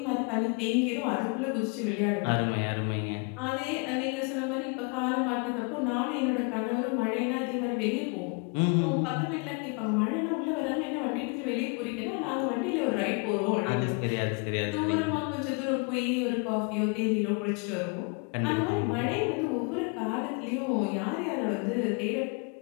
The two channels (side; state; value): right; quieter; 33.8 dB